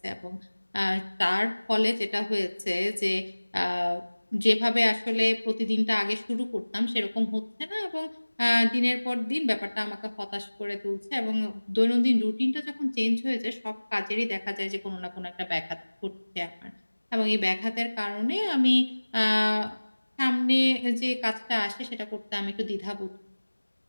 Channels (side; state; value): both; inverted; correlation -1.00